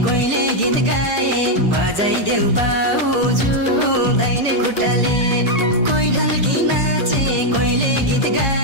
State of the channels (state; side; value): late; left; 1.8 ms